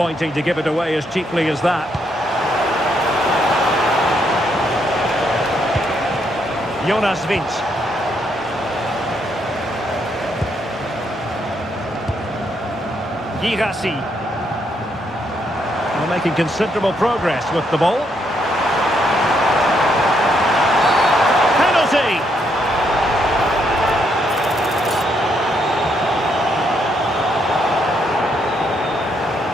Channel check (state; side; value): normal; both; correlation 0.75